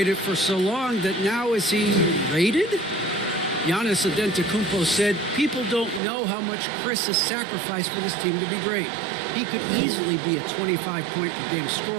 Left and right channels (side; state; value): left; drops out; at 6.0 s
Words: for so long that now is he rated? Giannis Antetokounmpo said, people don't know how much Chris has sacrificed for this team to be great. He could easily be a 25-point-per-game